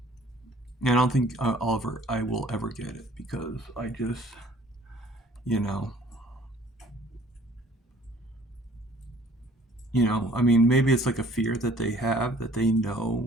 and I don't think I will ever get it because I just, you know, I mean, maybe it's like a fear that they have that they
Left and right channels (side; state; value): both; normal; correlation 0.55